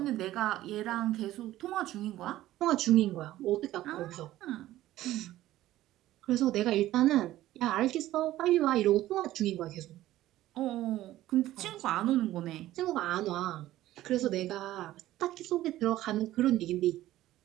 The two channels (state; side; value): quieter; left; 14.8 dB